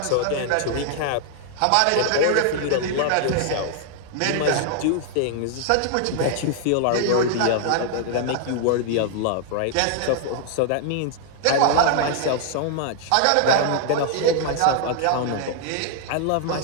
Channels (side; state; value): both; different; correlation 0.00